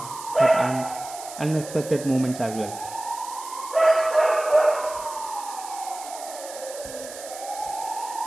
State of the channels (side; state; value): right; noise; hiss, 13 dB below the sound